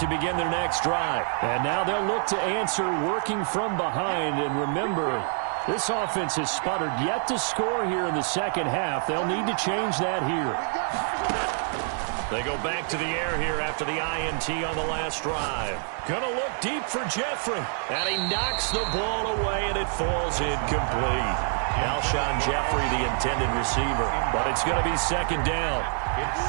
begin their next drive. And now they'll look to answer working from behind. And remember, this offense has sputtered yet to score here in the 2nd half. They'll need to change that here. They go back to the air here after the INT on the last drive. Gonna look deep for Jeffrey. And he knocks the ball away and it falls incomplete. Alshon Jeffrey, the intended receiver. But it's going to be 2nd down. It's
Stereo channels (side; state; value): left; silent; 56 dB below the other